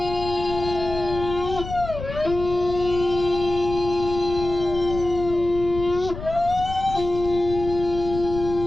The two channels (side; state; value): left; noise; rumble, 10 dB below the sound